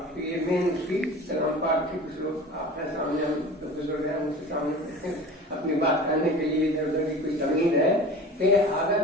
تو یہ مین اس کی کلام پاک کی کچھ لوگ آپ کے سامنے, ہم بزرگ ہیں, ان کے سامنے اپنی بات کرنے کے لیے ادھر ادھر کی کوئی تمہید ہے کہ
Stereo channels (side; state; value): both; normal; correlation 0.38